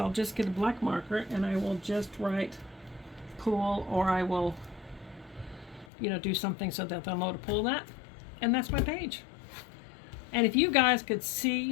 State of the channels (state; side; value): drops out; right; at 5.9 s